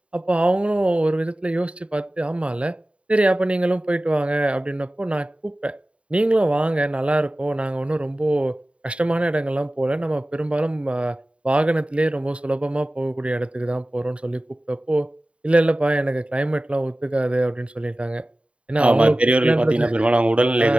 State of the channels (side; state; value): left; late; 0.061 ms